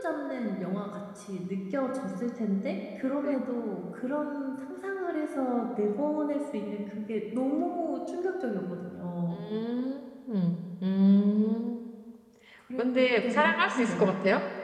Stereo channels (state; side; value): identical; both; correlation 1.00